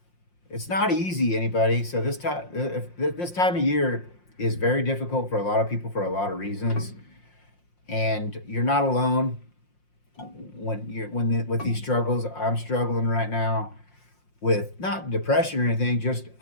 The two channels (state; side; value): late; right; 5.6 ms